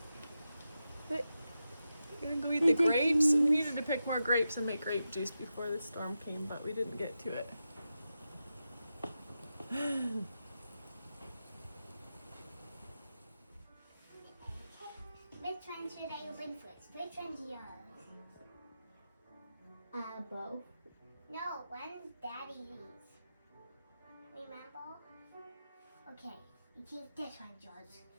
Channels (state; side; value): inverted; both; correlation -0.90